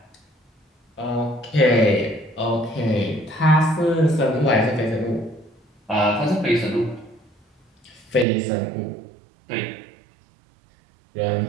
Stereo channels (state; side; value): drops out; left; at 8.2 s